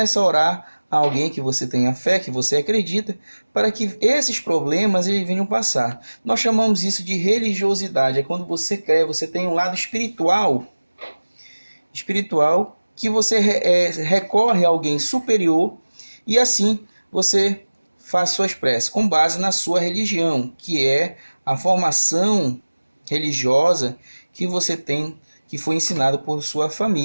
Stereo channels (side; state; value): both; inverted; correlation -1.00